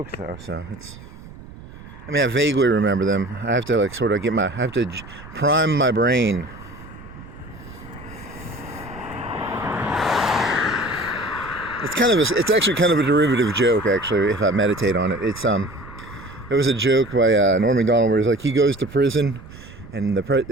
though, so it's... I mean, I vaguely remember them. I have to like sort of I have to prime my brain. It's actually kind of a derivative joke, actually, if I meditate on it. It was a joke by Norm Macdonald where he's like, he goes to prison, and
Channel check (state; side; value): noise; right; rumble, 17 dB below the sound